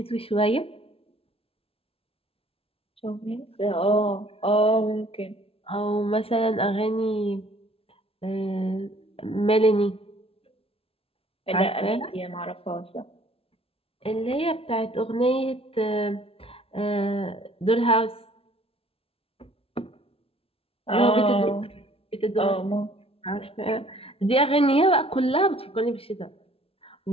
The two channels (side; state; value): right; late; 0.27 ms